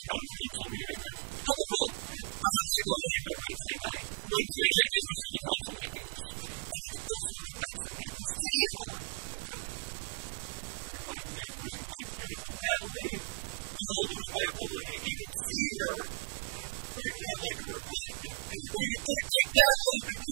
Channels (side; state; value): left; silent; 54 dB below the other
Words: council meeting, and... Hold the phone. I'm not going anywhere Wednesday night. Wednesday night is the city council meetings. And it's also the night Samantha City is on. Oh, God. You remind me of losing my beautiful Natalie. Now I'll lose my ability to even see her. Frankly, I'd like to remind you that you can take my Natalie, but